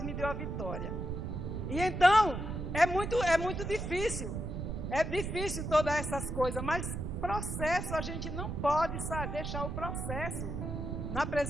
me deu a vitória. E então, é muito difícil. É difícil todas essas coisas, mas processo, a gente não pode deixar o processo na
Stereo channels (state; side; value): noise; right; rumble, 4 dB below the sound